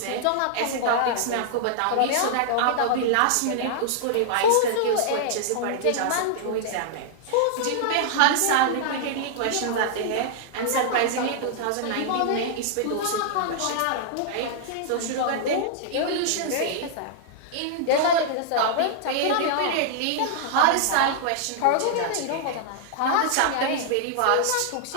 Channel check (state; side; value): different; both; correlation -0.01